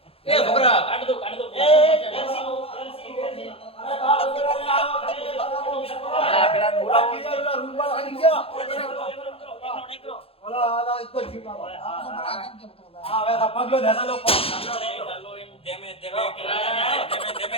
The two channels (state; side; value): late; right; 0.27 ms